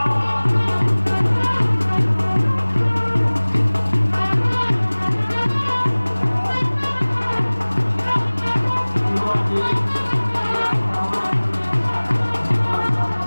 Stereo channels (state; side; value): inverted; both; correlation -1.00